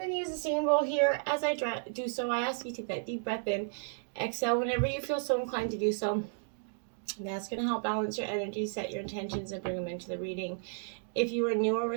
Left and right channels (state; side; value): silent; left; digital silence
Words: to use the same roll here. As I do so, I ask you to take that deep breath in. Exhale whenever you feel so inclined to do so. That's going to help balance your energy, set your intentions, and bring them into the reading. If you are new or